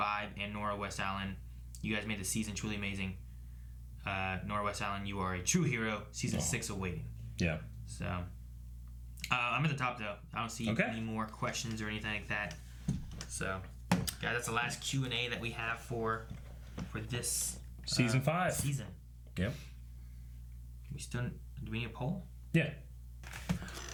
and Nora West Allen. You guys made the season truly amazing. Nora West Allen, you are a true hero. Season 6 awaiting. Yeah. So I'm at the top though. I don't see any more questions or anything like that. So, guys, that's the last Q&A that we have for this season 5. Season. Yep. Do we need a poll? Yeah.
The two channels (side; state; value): both; identical; correlation 1.00